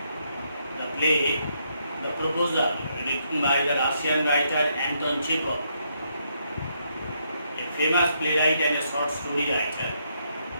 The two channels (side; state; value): both; inverted; correlation -0.76